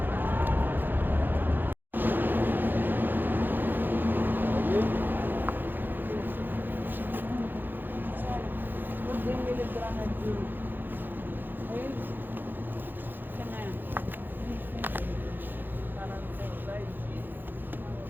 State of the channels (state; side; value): late; left; 0.092 ms